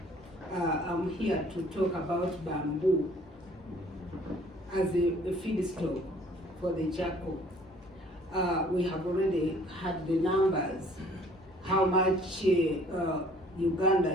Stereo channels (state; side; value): normal; both; correlation 0.56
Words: I'm here to talk about bamboo as a feedstock for the charcoal. We have already had the numbers, how much Uganda